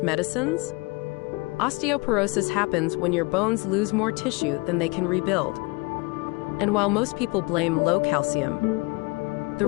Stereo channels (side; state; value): right; quieter; 26.2 dB